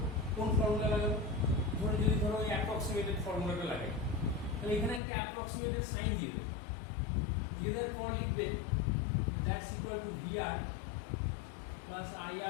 কোন ফর্মুলা লাগাবো? যদি ওই অ্যাপ্রক্সিমেটেড ফর্মুলাটা লাগে, তাহলে এখানে একটা অ্যাপ্রক্সিমেটেড সাইন দিয়ে দেবো। দিয়ে দেওয়ার পর লিখবে that's equal to VR plus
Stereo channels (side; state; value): right; drops out; at 5.0 s